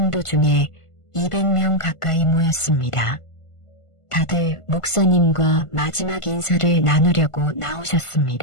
중에 200명 가까이 모였습니다. 다들 목사님과 마지막 인사를 나누려고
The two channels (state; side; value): late; right; 1.5 ms